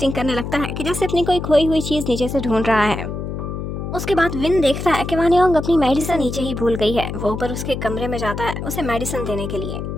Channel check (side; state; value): left; noise; hum, 5 dB below the sound